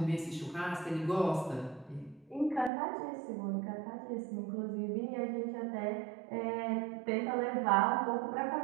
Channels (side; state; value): left; drops out; at 2.7 s